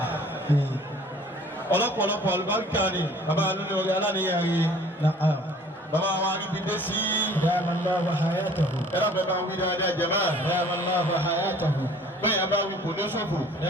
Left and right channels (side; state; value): both; normal; correlation 0.52